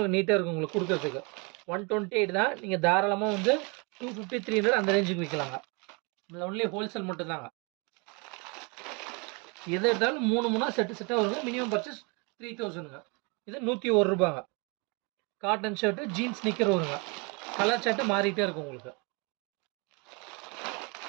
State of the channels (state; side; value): quieter; left; 31.2 dB